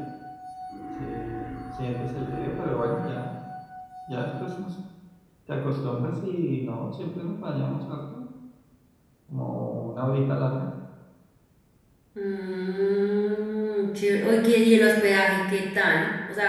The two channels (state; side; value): identical; both; correlation 1.00